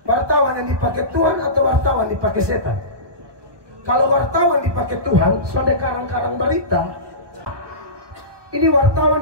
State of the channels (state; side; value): late; left; 1.2 ms